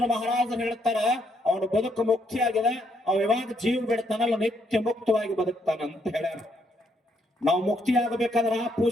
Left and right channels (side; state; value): both; normal; correlation 0.73